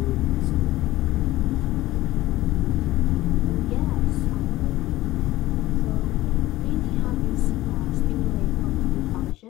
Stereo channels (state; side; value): quieter; right; 16.6 dB